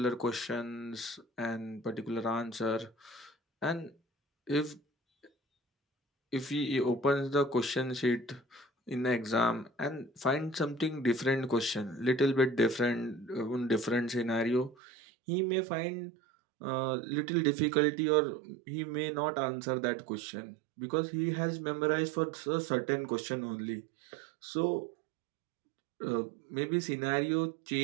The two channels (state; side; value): drops out; left; at 14.8 s